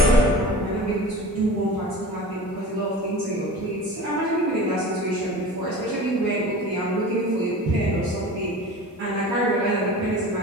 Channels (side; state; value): both; normal; correlation 0.37